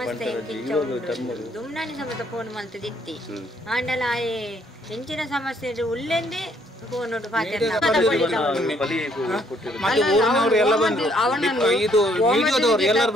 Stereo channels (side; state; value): both; normal; correlation 0.67